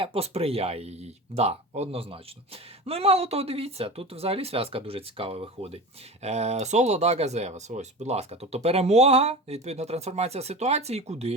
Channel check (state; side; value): normal; both; correlation 0.31